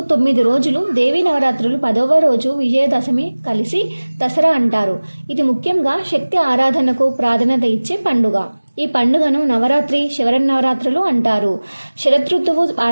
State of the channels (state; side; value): inverted; both; correlation -1.00